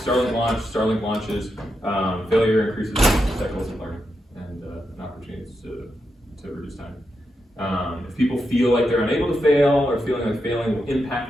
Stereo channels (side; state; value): both; normal; correlation 0.85